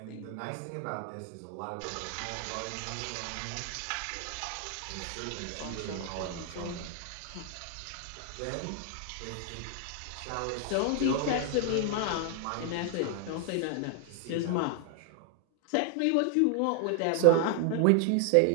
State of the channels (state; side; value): different; both; correlation 0.00